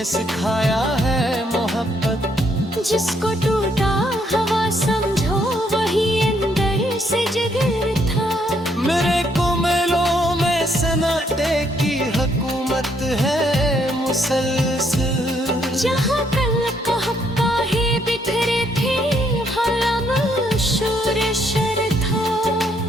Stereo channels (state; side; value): normal; both; correlation 0.72